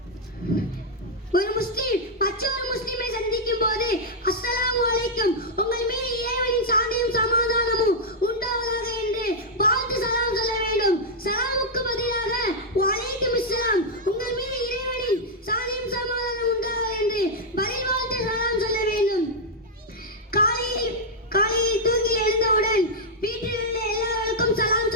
ஒரு முஸ்லிம் மற்றொரு முஸ்லிமை சந்திக்கும் போது அஸ்ஸலாமு அலைக்கும், உங்கள் மீது இறைவனின் சாந்தியும் சமாதானமும் உண்டாவதாக என்று வாழ்த்து சலாம் சொல்ல வேண்டும். சலாமுக்கு பதிலாக வலைக்கும் இஸ்லாம், உங்கள் மீது இறைவனின் சாந்தியும் சமாதானம் உண்டாவதாக என்று பதில் வாழ்த்து சலாம் சொல்ல வேண்டும். காலையில் தூங்கி எழுந்தவுடன் வீட்டில் உள்ள எல்லாருக்கும் சலாம்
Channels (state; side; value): normal; both; correlation -0.04